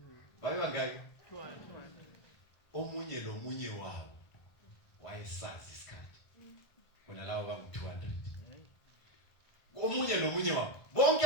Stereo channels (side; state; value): right; late; 1.5 ms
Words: Babe bangaki? 200. Omunye lomunye wabo wayesazi isikhathi. Bona labo bangu200. Omunye lomunye wabo bonke